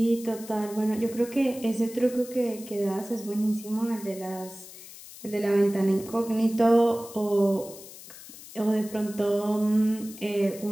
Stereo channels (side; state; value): left; noise; hiss, 16 dB below the sound